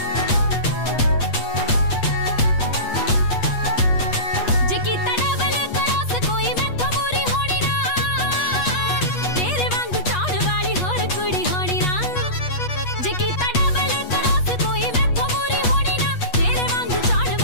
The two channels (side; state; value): right; late; 8.3 ms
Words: जे कीता डबल क्रॉस कोई मैथों मूरी होनी ना, तेरे वांगू चाहण वाली होर कुड़ी होनी ना। जे कीता डबल क्रॉस कोई मैथों मूरी होनी ना, तेरे वांगू चाहण